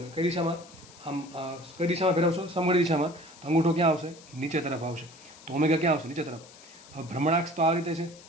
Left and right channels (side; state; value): left; noise; hiss, 21 dB below the sound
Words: કઈ દિશામાં? આમ કઈ દિશામાં ફેરવશો? સમઘડી દિશામાં. તો અંગૂઠો ક્યાં આવશે? નીચે તરફ આવશે. તો ઓમેગા ક્યાં આવશે? નીચે તરફ. હવે ભ્રમણાક્ષ તો આ રીતે છે.